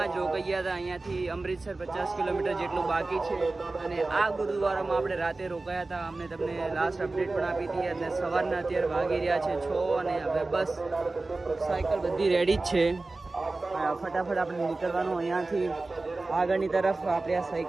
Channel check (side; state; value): left; quieter; 3.3 dB